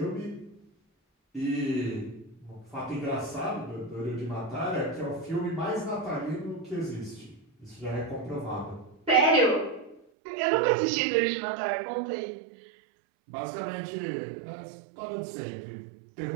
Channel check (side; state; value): left; drops out; at 10.0 s